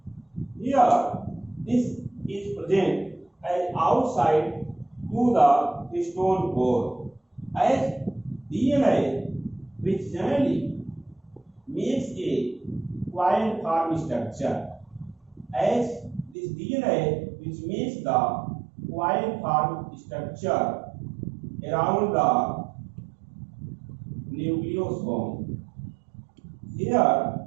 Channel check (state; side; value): drops out; left; at 16.4 s